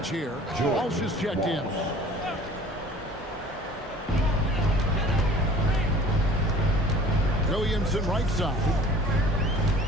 here. Walsh is checked in. Williamson right side.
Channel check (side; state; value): both; normal; correlation 0.48